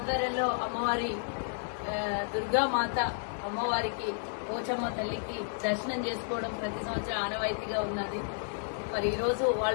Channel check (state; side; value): silent; right; digital silence